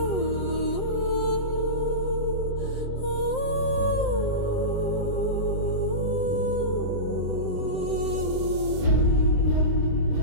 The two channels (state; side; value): late; right; 7.7 ms